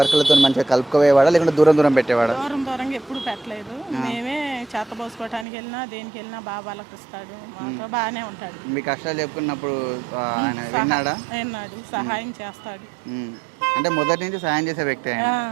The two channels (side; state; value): left; drops out; at 5.5 s